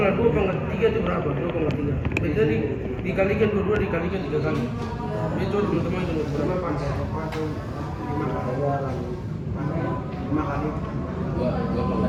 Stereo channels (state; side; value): identical; both; correlation 1.00